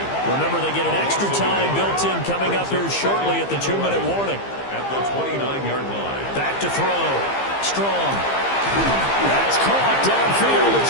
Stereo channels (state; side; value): late; right; 15 ms